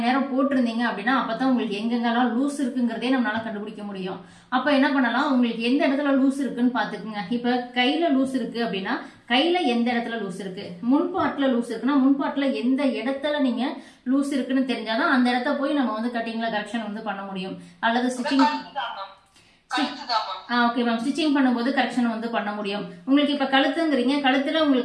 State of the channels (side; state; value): both; identical; correlation 1.00